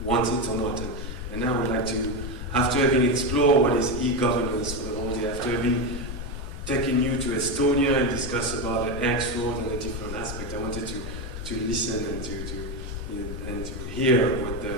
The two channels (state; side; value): noise; left; rumble, 7 dB below the sound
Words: want it or not. And now I would like to, after having explored what is e-governance for the whole day, after having taken you to Estonia and discuss about the X road and the different aspects, I wanted to listen and to hear what the